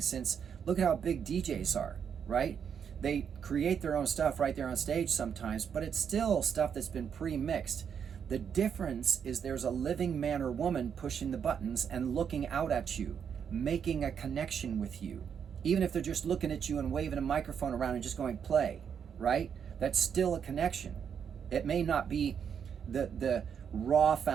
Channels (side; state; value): left; quieter; 7.5 dB